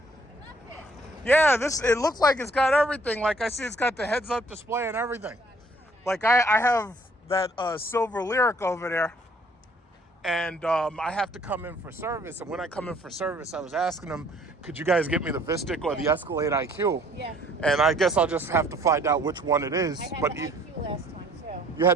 I love it. Yeah, it looks like it's got everything. Like I see it's got the heads-up display and everything. Like I have that silver Lyric over there. And I have to come in for service. And when I come in for service, I was asking them, could you guys get me the Vistic or the Escalade IQ? Yeah. And I guess I'll just have to find out which one it is. I had But the IQ last time, too. you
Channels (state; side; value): normal; both; correlation 0.60